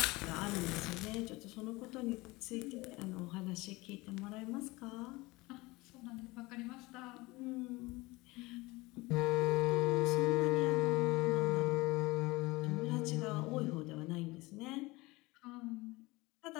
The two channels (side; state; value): right; quieter; 22.0 dB